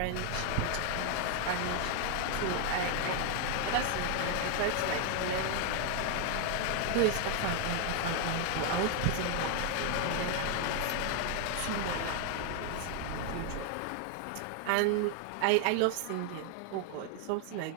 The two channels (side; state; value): both; different; correlation 0.00